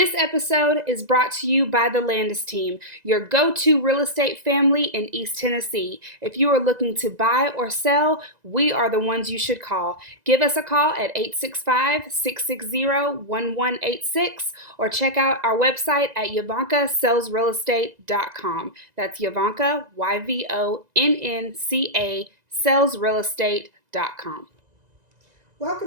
episode is brought to you by the Landes team, your go-to real estate family in East Tennessee. If you are looking to buy or sell, we are the ones you should call. Give us a call at 865-660-1186 or check out our website at YvoncaSellsRealEstate.com. That's Yvonnca, YVONNCA, sellsrealestate.com.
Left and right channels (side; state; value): left; late; 2.0 ms